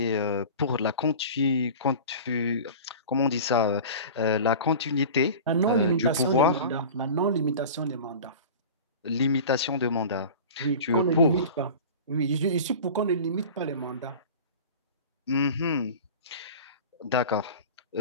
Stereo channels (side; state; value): both; inverted; correlation -0.36